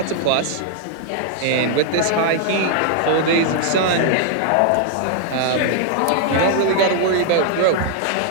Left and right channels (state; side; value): different; both; correlation -0.01